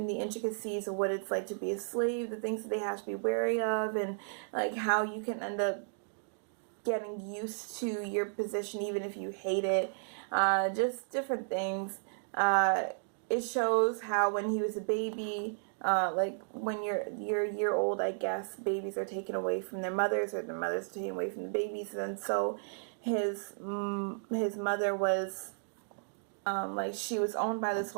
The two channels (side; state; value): left; silent; digital silence